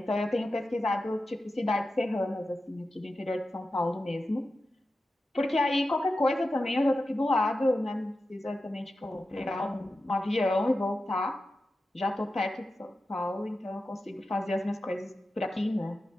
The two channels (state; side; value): normal; both; correlation 0.92